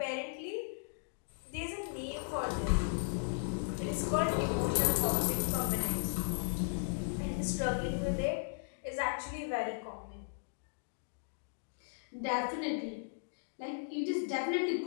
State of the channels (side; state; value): right; silent; digital silence